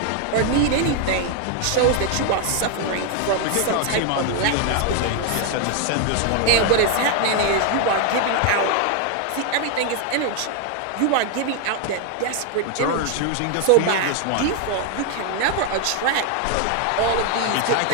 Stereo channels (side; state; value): both; different; correlation 0.01